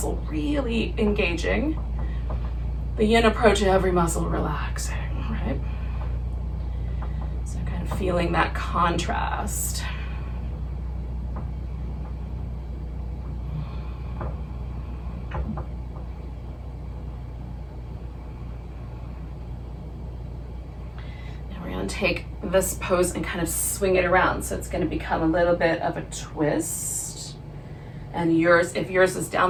really engaging. The yin approach, every muscle relaxing, right? So kind of feeling that contrast. Take this pose and kind of swing it around. So it's going to become a little bit of a twist. And yours, if yours is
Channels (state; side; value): identical; both; correlation 1.00